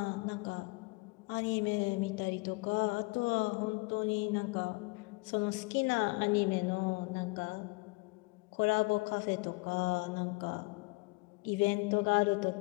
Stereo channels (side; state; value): right; quieter; 27.0 dB